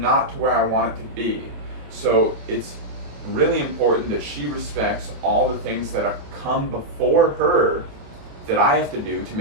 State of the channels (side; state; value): left; late; 28 ms